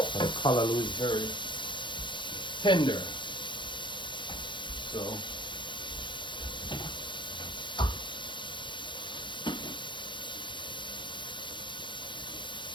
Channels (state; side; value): late; right; 0.23 ms